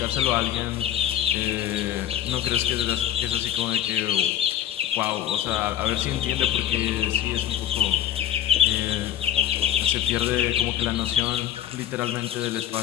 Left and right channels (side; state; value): right; quieter; 11.2 dB